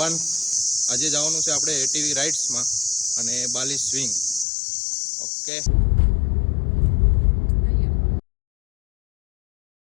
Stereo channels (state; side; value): drops out; right; at 4.5 s